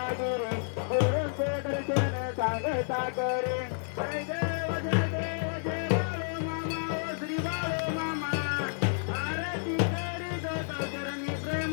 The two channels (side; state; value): right; silent; 57 dB below the other